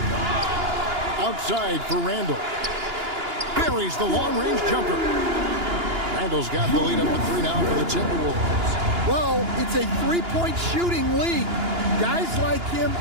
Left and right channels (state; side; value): late; left; 2.9 ms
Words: Outside for Randall. Buries the long-range jumper. Randall's got the lead up to 3 now for the Timberwolves. Well, it's a three-point shooting league. Guys like him